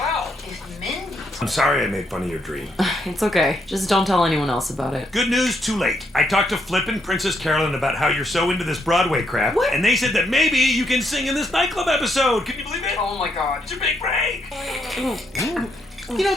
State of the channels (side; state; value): both; normal; correlation 0.75